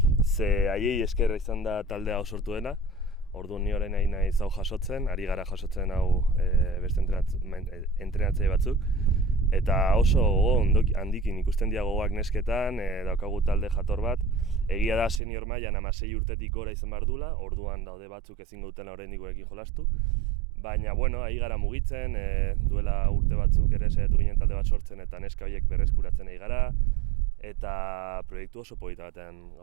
ze haiei eskerra izan da taldea sortu dena. Orduan ni orain naiz hau jasotzen, ari gara jasotzen hau beste entrenatzaile batzuk. Eta oso handikin ikusten dira gogoak nesketan, daukagu talde jator bat. Egia da senior mailan 16 urtetik gora izan behar dula, orduan daude batzuk ezingo dutela oraindik gurekin jolastu. Baina, ari gara mugitzen, duela urte batzuk ere saiatu ginen talde bat sortzen eta neska horiek berreskuratzen ari gara. Eta proiektu oso polita batean,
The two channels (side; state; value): left; drops out; at 15.2 s